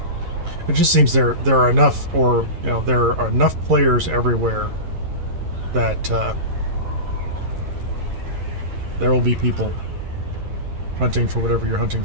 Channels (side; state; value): left; late; 11 ms